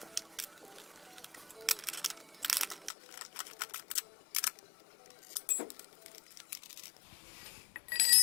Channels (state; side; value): drops out; right; at 2.9 s